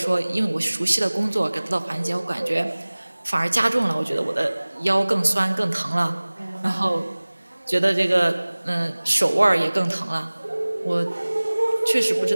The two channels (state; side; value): inverted; both; correlation -1.00